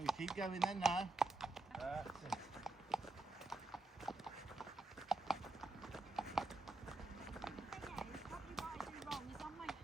keep going then now. That's it.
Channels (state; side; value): quieter; left; 3.1 dB